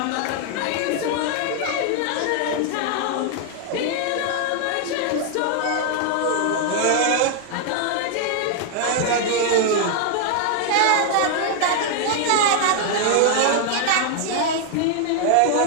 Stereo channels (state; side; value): different; both; correlation 0.00